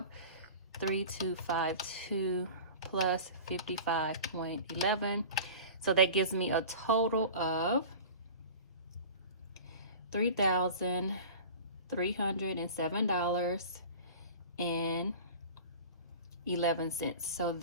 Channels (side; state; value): both; inverted; correlation -0.38